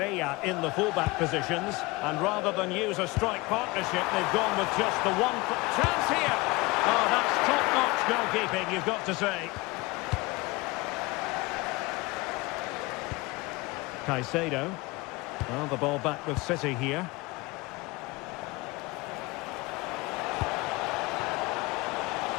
in the fullback positions. And rather than use a strike partnership, they've gone with just the one chance here. Oh, that's top-notch goalkeeping, you've got to say. Caicedo. Well, the ball back with City here.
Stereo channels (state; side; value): quieter; right; 23.4 dB